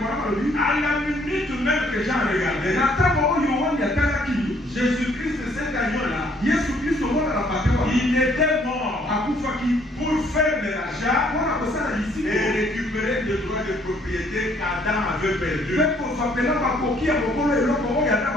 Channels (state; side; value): normal; both; correlation 0.64